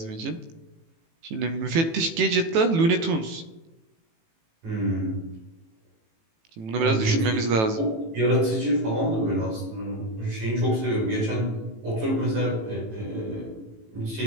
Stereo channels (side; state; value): left; late; 18 ms